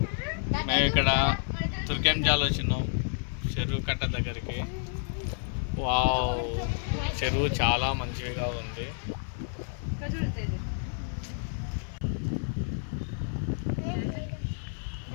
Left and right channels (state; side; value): silent; right; 58 dB below the other